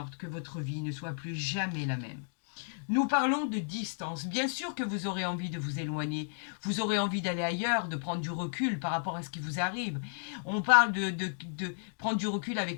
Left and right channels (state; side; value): silent; right; digital silence